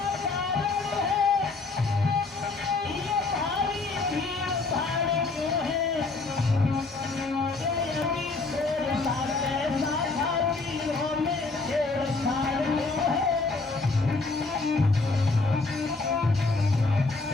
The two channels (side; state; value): right; quieter; 3.7 dB